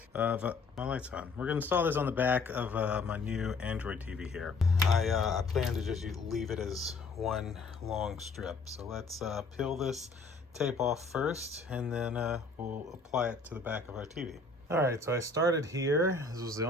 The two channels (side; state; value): right; quieter; 3.9 dB